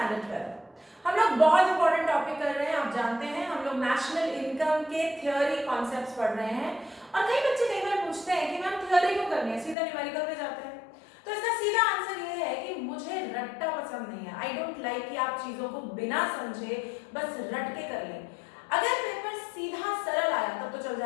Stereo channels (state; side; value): drops out; right; at 9.8 s